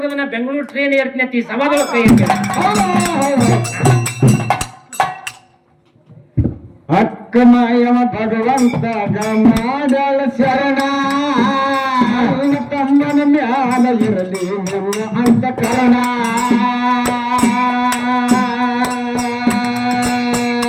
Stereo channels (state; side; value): identical; both; correlation 1.00